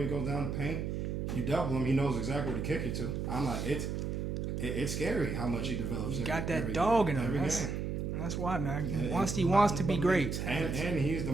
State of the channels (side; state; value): right; noise; hum, 2 dB below the sound